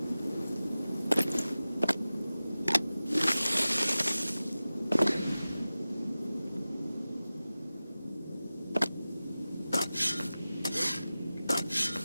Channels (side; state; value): both; inverted; correlation -0.96